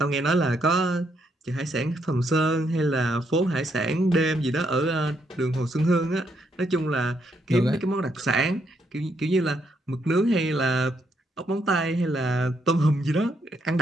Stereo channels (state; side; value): normal; both; correlation 0.76